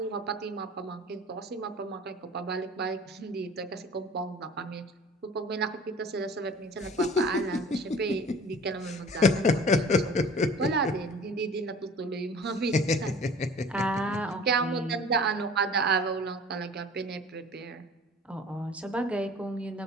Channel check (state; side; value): normal; both; correlation 0.45